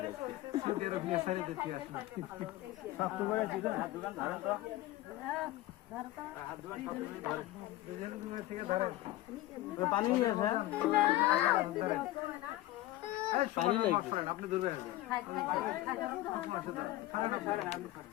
পানি নিয়ে আসেন পানি লাগবে আপনি দূরে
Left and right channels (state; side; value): quieter; right; 16.4 dB